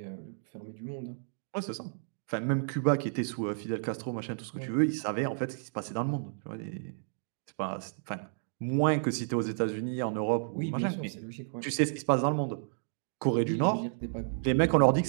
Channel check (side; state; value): left; silent; digital silence